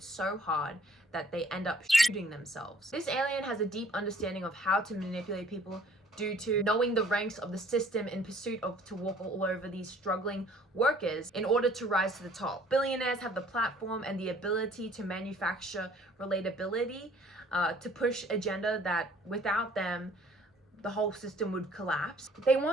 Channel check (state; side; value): normal; both; correlation 0.56